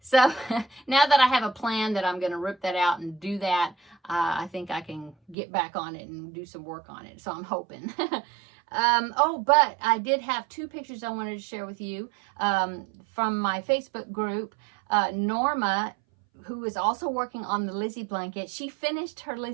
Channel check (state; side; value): drops out; left; at 5.4 s